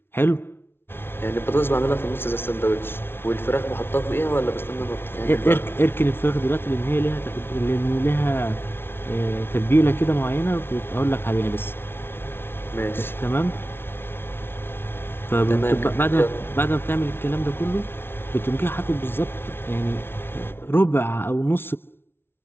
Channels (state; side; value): late; right; 0.11 ms